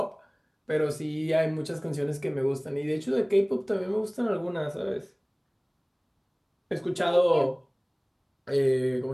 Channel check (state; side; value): identical; both; correlation 1.00